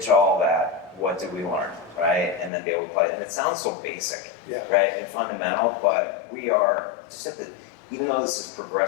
all that. What did we learn, right? And then be able to play. And it sounds so basic, right, and fundamental, but we are just at even though this is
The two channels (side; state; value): right; drops out; at 2.5 s